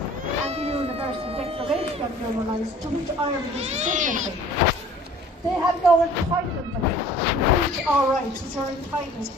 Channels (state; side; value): normal; both; correlation 0.50